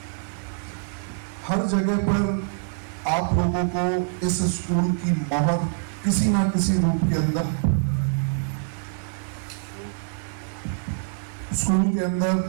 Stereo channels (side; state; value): left; silent; 62 dB below the other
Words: हर जगह पर आप लोगों को इस स्कूल की मोहर किसी ना किसी रूप के अंदर, स्कूल के